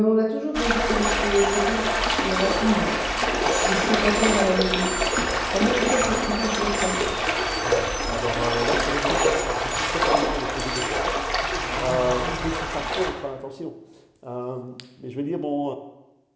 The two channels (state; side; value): identical; both; correlation 1.00